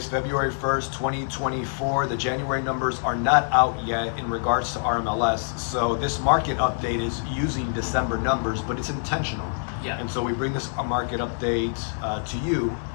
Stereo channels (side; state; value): right; silent; 61 dB below the other